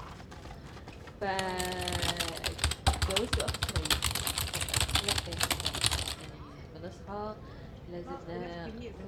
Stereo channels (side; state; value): both; identical; correlation 1.00